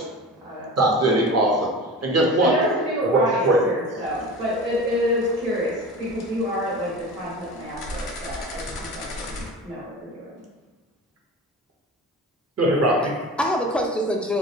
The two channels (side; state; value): both; normal; correlation 0.33